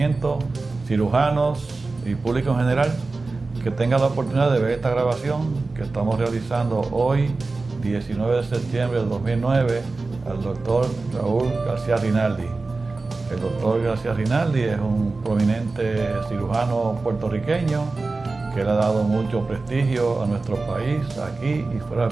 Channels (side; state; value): left; quieter; 3.6 dB